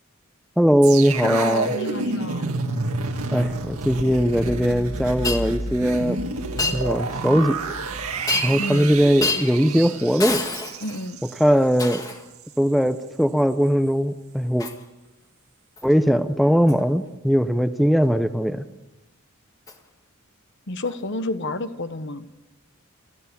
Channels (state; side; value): normal; both; correlation 0.86